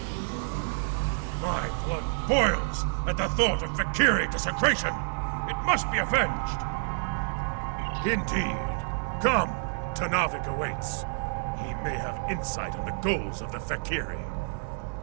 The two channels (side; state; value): left; silent; digital silence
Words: My blood boils at the thought of Fek'ihri desecration. It must be avenged. Indeed. Come, Tanavik awaits. He may have insight on the goals of the Fek'ihri.